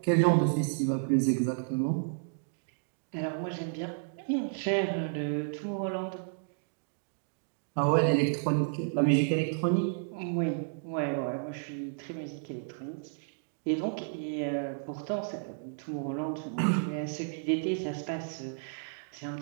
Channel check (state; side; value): silent; left; digital silence